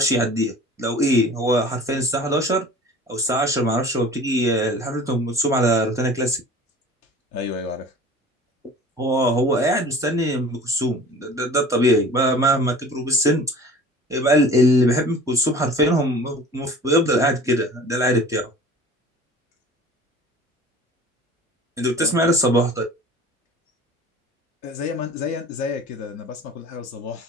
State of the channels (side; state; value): both; normal; correlation 0.43